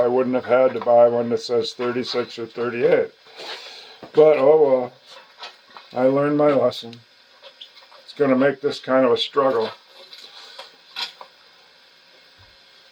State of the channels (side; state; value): both; identical; correlation 1.00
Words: wouldn't have had to buy one that says 36 or 38. But oh well, I learned my lesson. It's going to make this kind of a struggle.